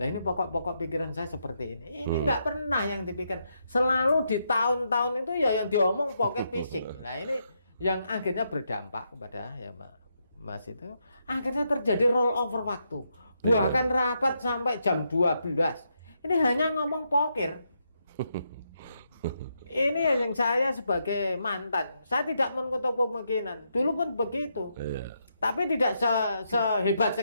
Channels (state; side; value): inverted; both; correlation -0.80